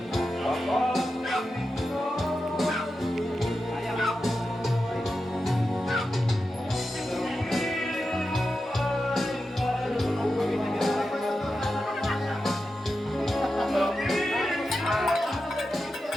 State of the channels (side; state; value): both; normal; correlation 0.90